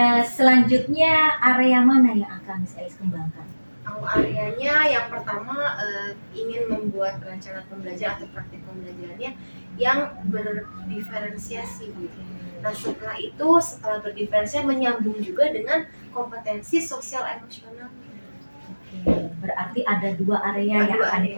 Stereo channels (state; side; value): inverted; both; correlation -1.00